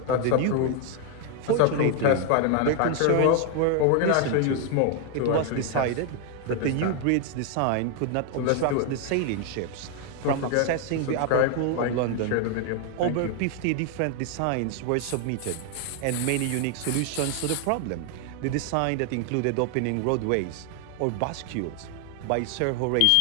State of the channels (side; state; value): both; different; correlation 0.00